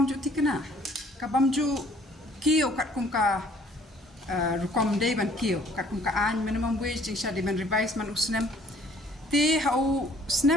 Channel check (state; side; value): normal; both; correlation 0.58